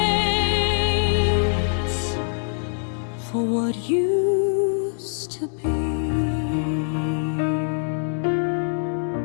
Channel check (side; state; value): right; silent; 63 dB below the other